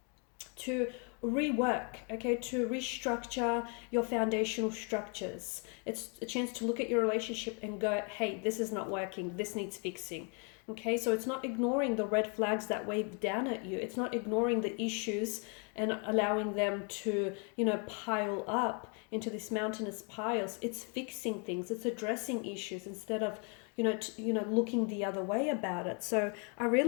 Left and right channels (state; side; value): quieter; right; 37.1 dB